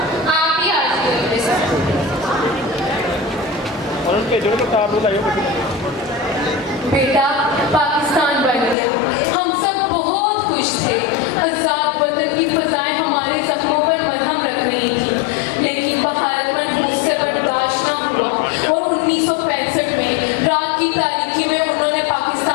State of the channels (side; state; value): right; drops out; at 8.8 s